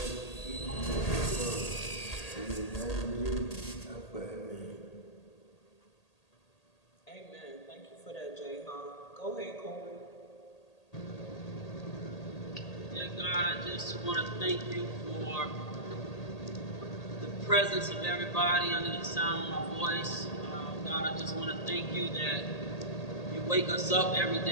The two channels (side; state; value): right; late; 1.8 ms